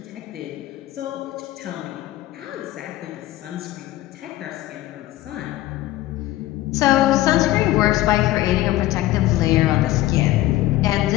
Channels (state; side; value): quieter; right; 15.8 dB